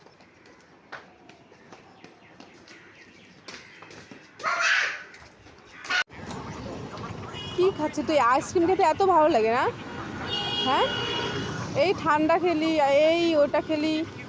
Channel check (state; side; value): identical; both; correlation 1.00